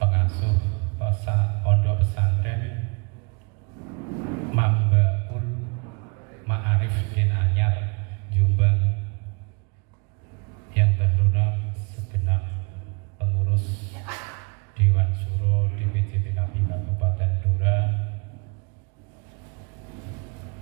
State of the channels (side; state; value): left; quieter; 33.4 dB